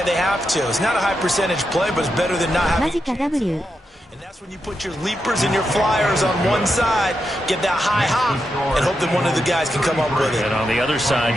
they have to. It's not a high percentage play, but it's better than not having. マジか W。 And that's when you put your leapers and your flyers on one side, get that high hop, and hope that one of the guys can come up with it. And on the other side,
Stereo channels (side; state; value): both; normal; correlation 0.86